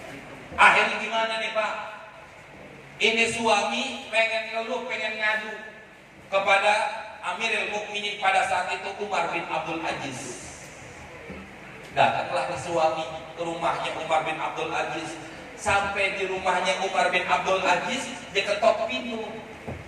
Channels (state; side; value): identical; both; correlation 1.00